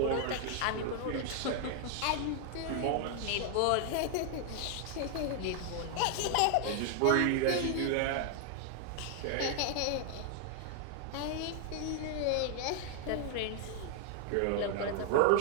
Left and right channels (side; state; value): both; different; correlation 0.00